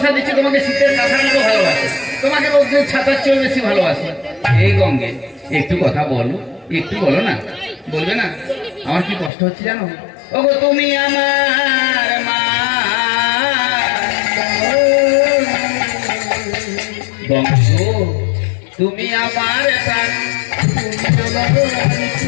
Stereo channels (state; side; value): drops out; right; at 9.3 s